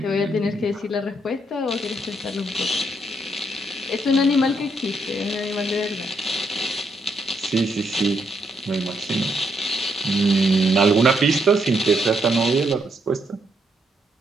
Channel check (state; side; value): normal; both; correlation 0.76